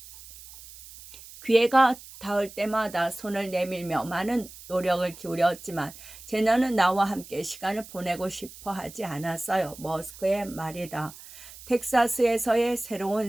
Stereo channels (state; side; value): noise; right; hiss, 17 dB below the sound